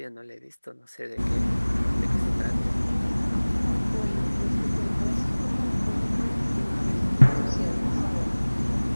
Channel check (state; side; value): inverted; both; correlation -1.00